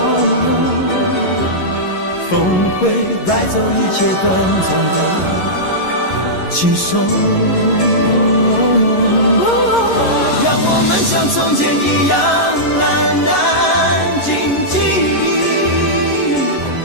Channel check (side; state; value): right; late; 11 ms